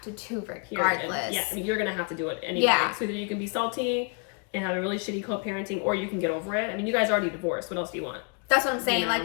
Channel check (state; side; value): quieter; right; 35.5 dB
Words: to do regardless. Yeah, I mean, you're gonna have to do it anyway. Yeah. So either you can be salty and have a really shitty co-parenting, or you can get over it. I mean, you guys already divorced. What else do you want? That's what I'm saying. You know? Like,